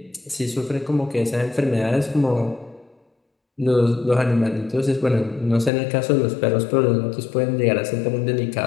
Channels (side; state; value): right; drops out; at 5.7 s